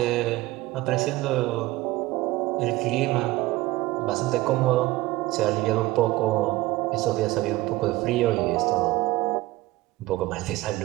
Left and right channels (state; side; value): quieter; left; 18.7 dB